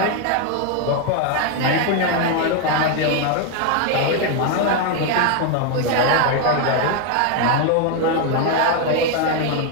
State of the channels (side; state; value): both; different; correlation 0.01